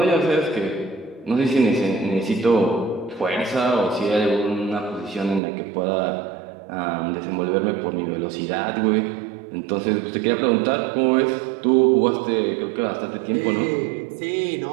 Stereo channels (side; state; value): left; drops out; at 5.4 s